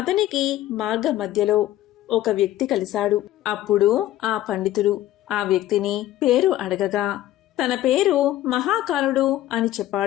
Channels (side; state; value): right; quieter; 14.0 dB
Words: మార్గ మధ్యలో ఒక వ్యక్తి కలిశాడు. అప్పుడు ఆ పండితుడు ఆ వ్యక్తిని పేరు అడగగా తన పేరు మహాకాలుడు అని